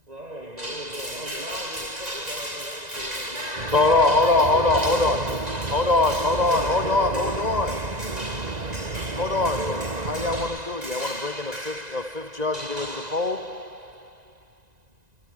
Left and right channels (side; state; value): left; late; 1.9 ms